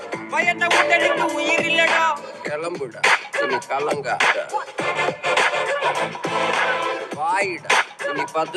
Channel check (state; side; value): identical; both; correlation 1.00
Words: பயந்த உடலுக்கு உயிர் இல்லடா. கிளம்புடா இனி கலங்காத, வாயிடா இனி